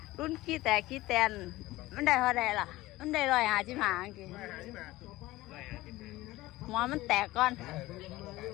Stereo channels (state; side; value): quieter; right; 18.1 dB